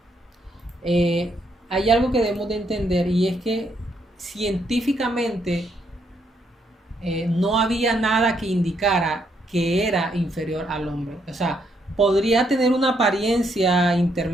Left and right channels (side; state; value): both; normal; correlation 0.75